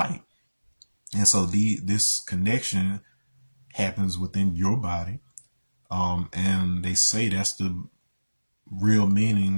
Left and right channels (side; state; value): both; inverted; correlation -1.00